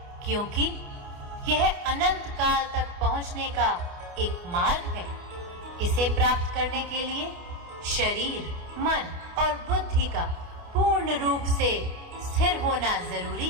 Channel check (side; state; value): left; late; 28 ms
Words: क्योंकि यह अनंत काल तक पहुंचने का एक मार्ग है। इसे प्राप्त करने के लिए शरीर, मन और बुद्धि का पूर्ण रूप से स्थिर होना जरूरी